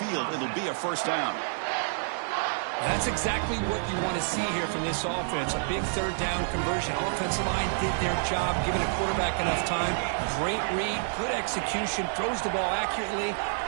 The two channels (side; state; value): left; silent; digital silence